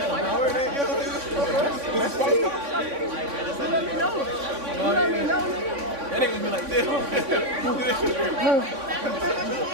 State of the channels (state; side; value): late; left; 3.5 ms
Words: That ain't gonna be like this.